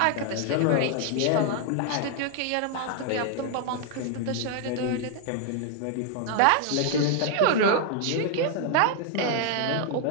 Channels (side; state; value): both; different; correlation 0.00